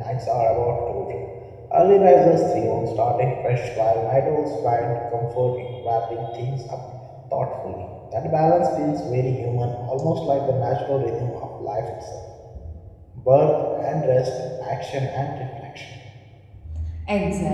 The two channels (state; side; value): identical; both; correlation 1.00